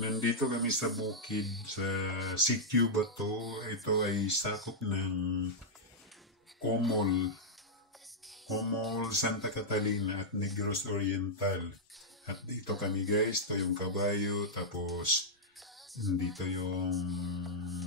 kami sa bukid, sa Sitio Bato. Ito ay sakop ng Comol, Santa Catalina at Negros Oriental. At dito kami guys, ito yung kabayo, tapos dito yung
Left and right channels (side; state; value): both; normal; correlation -0.07